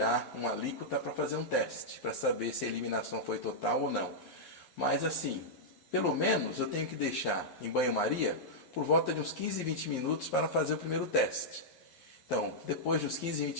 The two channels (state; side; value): late; right; 11 ms